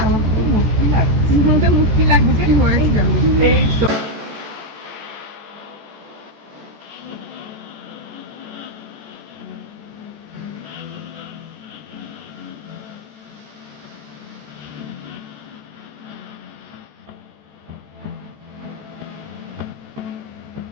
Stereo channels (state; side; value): late; left; 14 ms